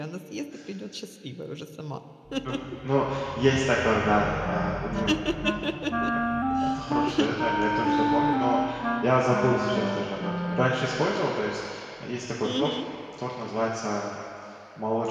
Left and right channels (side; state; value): both; identical; correlation 1.00